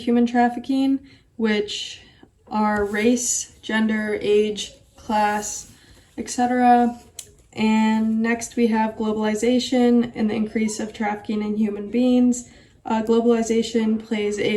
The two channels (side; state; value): both; identical; correlation 1.00